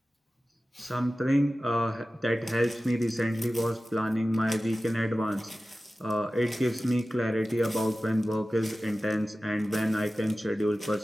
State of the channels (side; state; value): both; normal; correlation 0.95